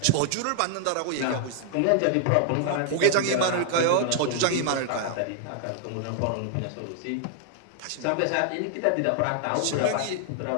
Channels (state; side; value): different; both; correlation 0.00